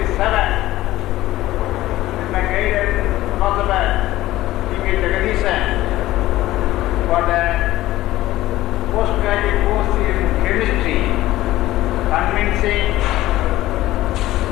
with my guided philosopher T.K. Jagadisan for the postgraduate course in chemistry, convincing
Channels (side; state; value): right; quieter; 15.9 dB